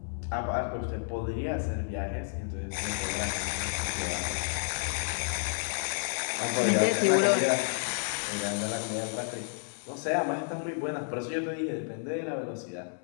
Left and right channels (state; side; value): silent; right; digital silence